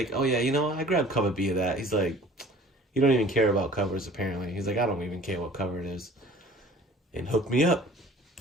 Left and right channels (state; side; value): normal; both; correlation 0.48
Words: oh yeah, you know, I grabbed cover B of that. He's like, you don't even care about covers apparently. He's like, I don't even care what cover it is. And hooked me up